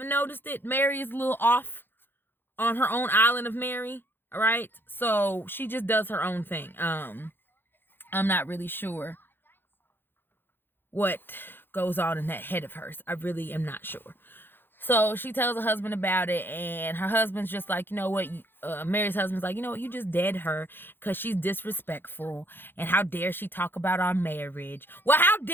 noticed it, Mary is a little off on her own island of Mary. All right, so she just does her own thing. I'm not really sure what goes on in that head of hers. I really am not sure. So she tells her husband about it, and her husband's just like, you know what? Mary's husband's like, you know what? You just dead her because she's disrespectful, and how dare she talk about our marriage? Well, how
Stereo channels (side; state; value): right; late; 0.10 ms